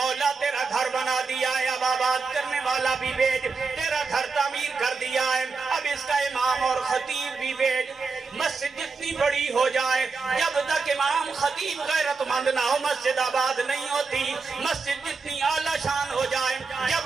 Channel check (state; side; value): quieter; left; 4.6 dB